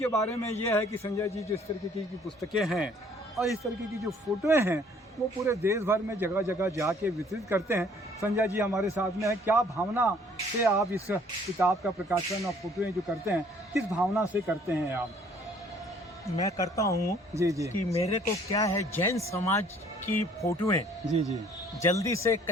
बारे में ये है कि संजय जी जिस तरीके की पुस्तकें हैं और इस तरीके की जो फोटोएं हैं वो पूरे देश भर में जगह जगह जाके वितरित करते हैं। संजय जी हमारे साथ में है। क्या भावना से आप इस किताब का प्रकाशन और फोटोएं जो करते हैं, किस भावना से करते हैं आप? मैं करता हूँ जी जी कि मेरे को क्या है, जैन समाज की फोटोएं जी जी जल्दी से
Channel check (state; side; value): normal; both; correlation 0.58